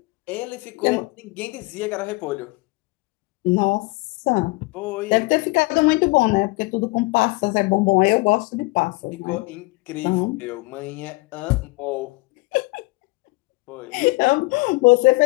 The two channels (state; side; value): quieter; right; 24.8 dB